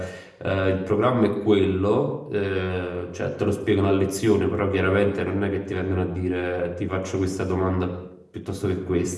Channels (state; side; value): identical; both; correlation 1.00